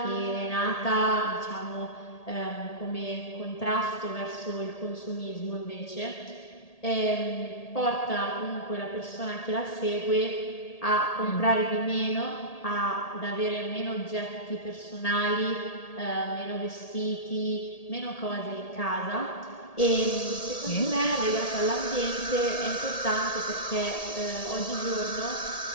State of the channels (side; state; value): right; late; 1.8 ms